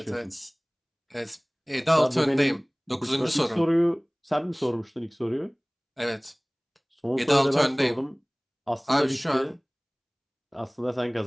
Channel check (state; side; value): identical; both; correlation 1.00